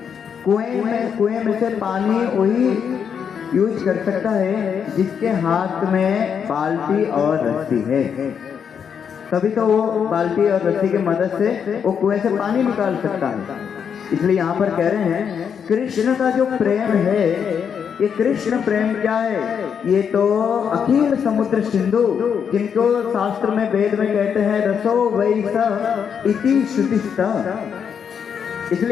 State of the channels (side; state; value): right; quieter; 7.3 dB